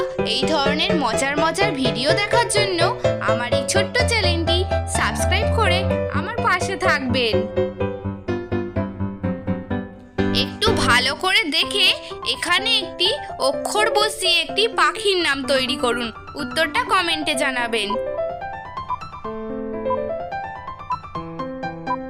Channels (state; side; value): identical; both; correlation 1.00